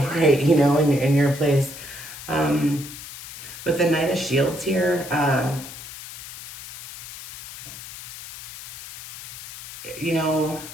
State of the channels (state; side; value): noise; left; hiss, 13 dB below the sound